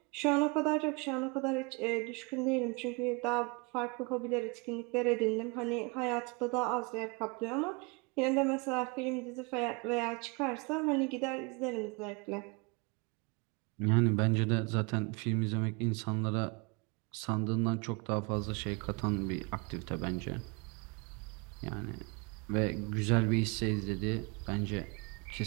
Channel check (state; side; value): quieter; left; 30.0 dB